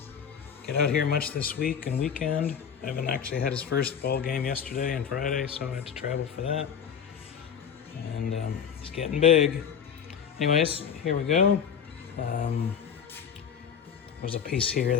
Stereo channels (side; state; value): right; quieter; 7.7 dB